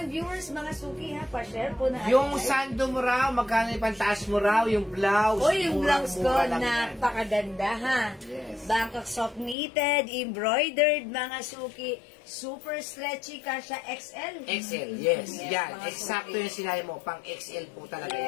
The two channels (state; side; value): drops out; right; at 9.6 s